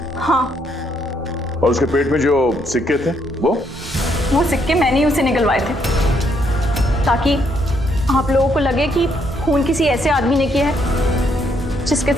हाँ, और उसके पेट में जो सिक्के थे वो सिक्के मैंने ही उसे निकलवाए थे ताकि आप लोगों को लगे कि खून किसी ऐसे आदमी ने किया है जिसके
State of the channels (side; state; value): both; normal; correlation 0.73